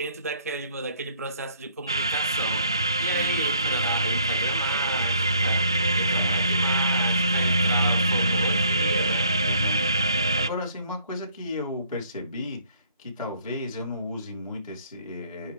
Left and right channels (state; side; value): inverted; both; correlation -0.62